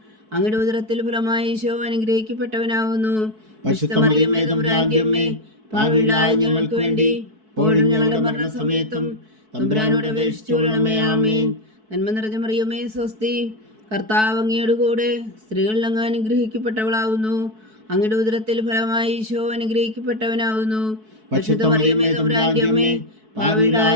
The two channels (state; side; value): late; left; 4.6 ms